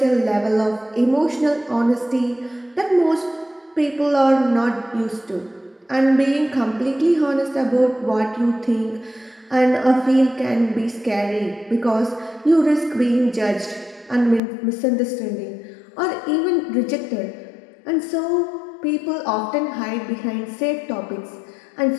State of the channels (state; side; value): drops out; right; at 14.4 s